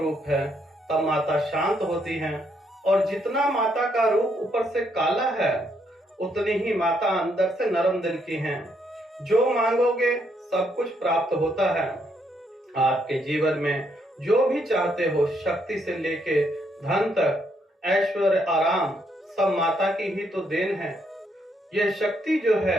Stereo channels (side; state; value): both; normal; correlation 0.74